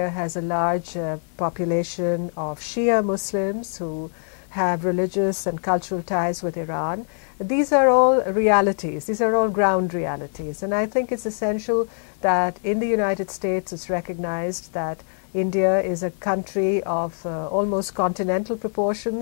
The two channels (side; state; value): right; silent; 63 dB below the other